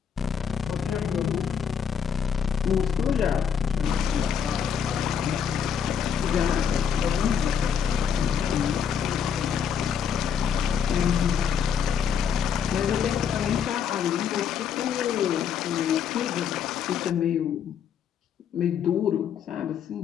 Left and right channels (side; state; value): right; quieter; 7.7 dB